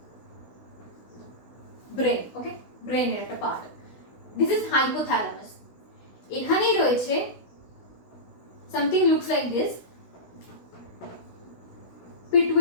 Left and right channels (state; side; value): late; right; 16 ms